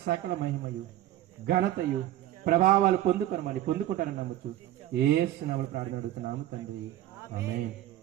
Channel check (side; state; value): left; quieter; 13.5 dB